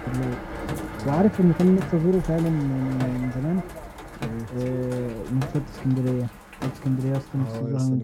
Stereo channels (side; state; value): both; identical; correlation 1.00